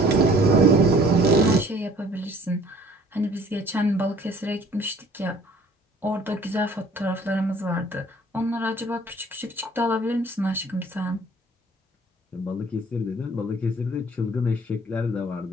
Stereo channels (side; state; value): both; normal; correlation 0.54